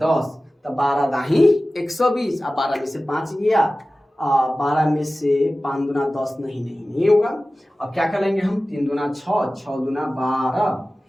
तो 12 दाही 120। अब 12 में से 5 गया, 12 में से 5 दूना 10 नहीं होगा। अब क्या कर लेंगे हम? 3 दूना 6, 6 दूना 12,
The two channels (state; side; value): normal; both; correlation 0.96